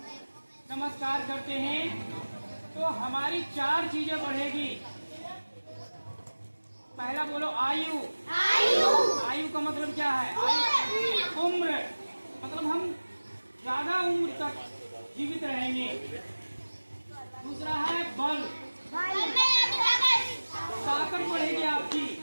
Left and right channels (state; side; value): inverted; both; correlation -1.00